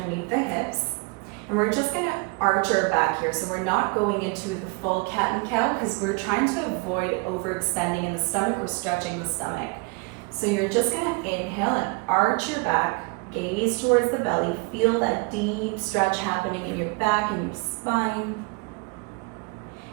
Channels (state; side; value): quieter; left; 28.8 dB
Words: the hips. And we're just going to arch our back here. So we're not going into the full cat and cow because we're trying to avoid overextending in the stomach or stretching the stomach. So you're just going to inhale and arch your back, gaze towards the belly, feel that deep stretch happening in your back and your spine.